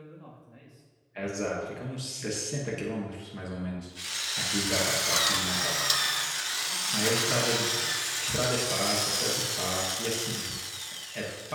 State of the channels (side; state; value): both; identical; correlation 1.00